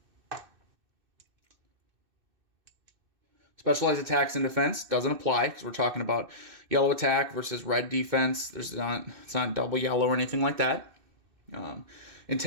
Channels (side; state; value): left; late; 2.6 ms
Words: Specialized attacks and defense doesn't apply because we're talking about yellow attack versus red defense. It's not double yellow or anything like that.